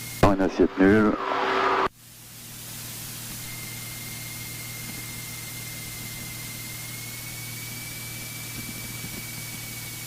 Dans une assiette nulle.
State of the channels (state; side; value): identical; both; correlation 1.00